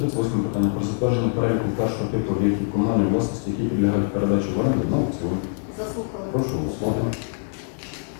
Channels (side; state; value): right; silent; 63 dB below the other